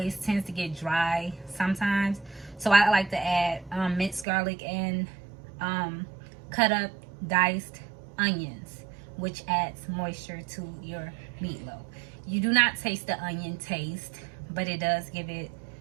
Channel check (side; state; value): left; drops out; at 4.2 s